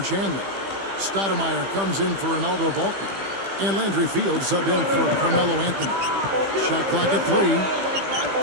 Chandler. Stoudemire comes in for Ronaldo Balkman. And Landry Fields subbed in for Carmelo Anthony. Shot clock at 3.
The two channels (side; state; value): left; late; 15 ms